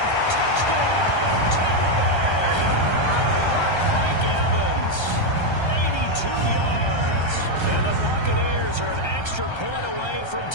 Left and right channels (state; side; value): late; right; 1.3 ms